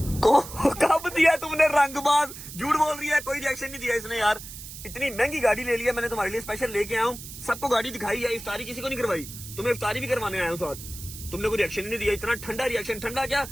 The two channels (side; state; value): right; noise; hiss, 12 dB below the sound